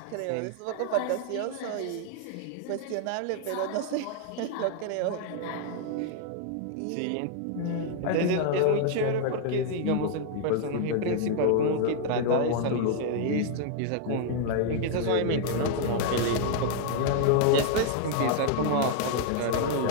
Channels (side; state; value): both; different; correlation 0.00